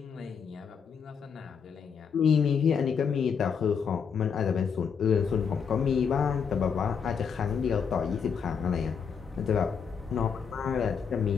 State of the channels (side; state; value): right; quieter; 6.6 dB